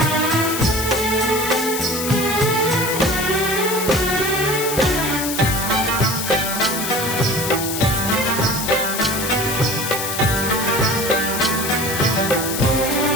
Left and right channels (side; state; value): left; noise; hiss, 4 dB below the sound